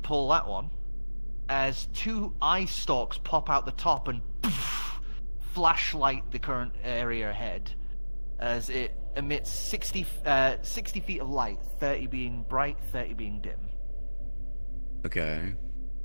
that one, as 2 eye stalks pop out the top and flashlight the current area ahead, as it emits 60 feet of light, 30 being bright, 30 being dim. Okay.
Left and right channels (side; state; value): both; inverted; correlation -1.00